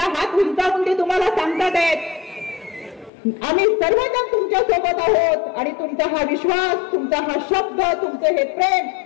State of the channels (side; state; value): right; drops out; at 3.1 s